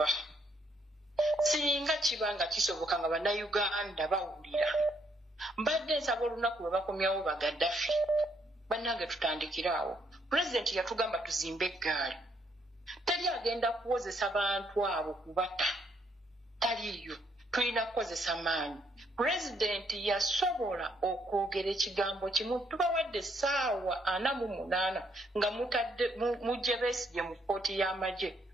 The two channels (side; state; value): both; normal; correlation 0.72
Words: Singa kibanga kisoboka nga bannayuganda bawulira. Mbadde nsaba olunaku lwe bakomyawo ba Gaddafi. Bannange tutandikiraawo. President yatugamba tuzimbe eggaali. Tali agenda kuwozesa bantu abo kubata. Taliyo. Tulina kukozesa maanyi. President yasobola okwogera ekigambo kimu tubawadde essaawa 48 nga mutadde mujje Besigye mu kkooti y'amagye